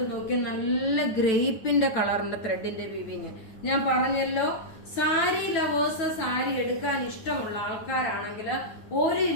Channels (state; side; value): late; right; 9.2 ms